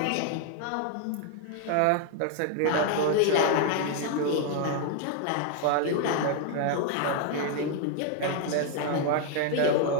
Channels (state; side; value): different; both; correlation 0.00